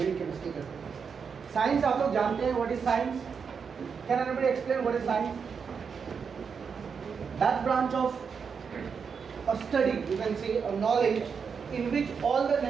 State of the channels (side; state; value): left; quieter; 6.1 dB